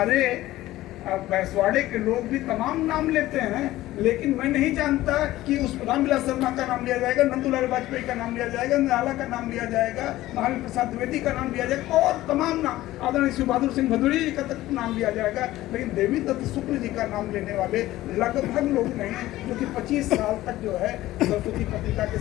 बैसवाड़े के लोग भी तमाम नाम लेते हैं, लेकिन मैं नहीं जानता कि उस रामविलास शर्मा का नाम लिया जाएगा, नंदुलाल वाजपेयी का नाम लिया जाएगा, निराला का नाम लिया जाएगा, महावीर प्रसाद द्विवेदी का नाम लिया जाएगा और तमाम नाम, आदरणीय शिव बहादुर सिंह भदौरिया जी का तक नाम लिया जाएगा। लेकिन देवी दत्त शुक्ल जी का नाम लेने वाले लगभग लोग नहीं हैं, जो कि 25 साल तक जो है सरस्वती पत्रिका के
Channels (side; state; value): right; quieter; 16.0 dB